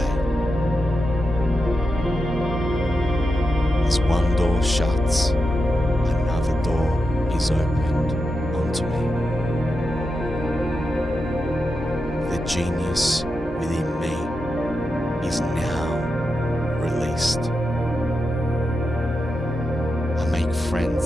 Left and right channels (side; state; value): both; normal; correlation 0.88